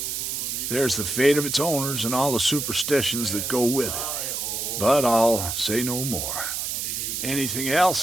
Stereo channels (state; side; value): noise; right; hiss, 3 dB below the sound